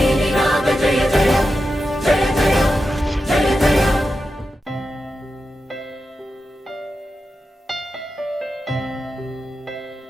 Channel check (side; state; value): both; normal; correlation 0.90